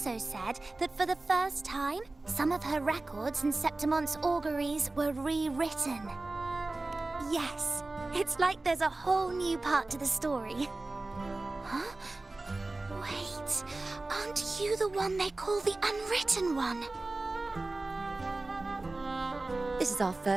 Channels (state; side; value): quieter; left; 3.1 dB